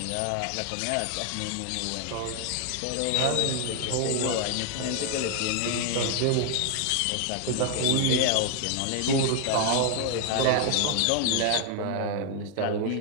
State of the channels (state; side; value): different; both; correlation 0.00